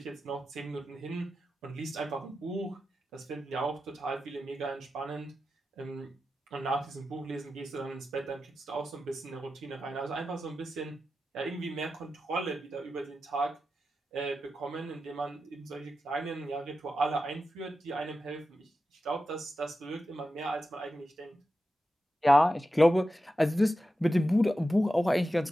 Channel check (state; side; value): normal; both; correlation 0.91